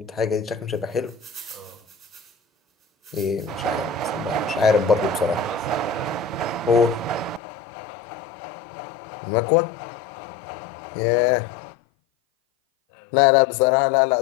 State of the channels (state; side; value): drops out; right; at 7.4 s